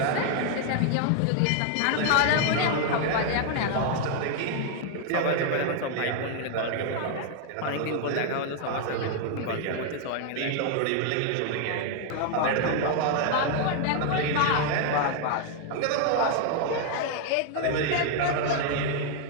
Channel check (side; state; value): both; different; correlation 0.00